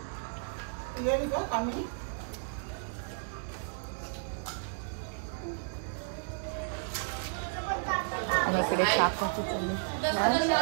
आणि इकडे चहा कॉफी चालले.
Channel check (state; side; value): silent; left; digital silence